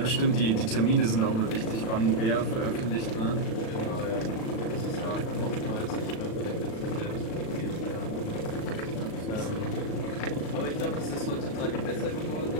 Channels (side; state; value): right; late; 37 ms